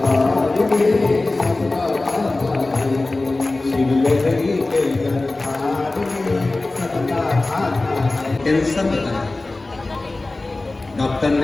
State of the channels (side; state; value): right; quieter; 3.1 dB